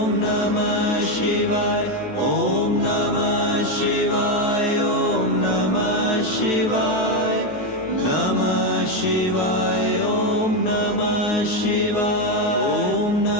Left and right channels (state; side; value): late; right; 10 ms